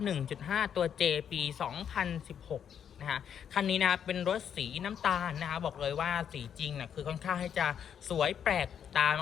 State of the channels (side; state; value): right; quieter; 8.4 dB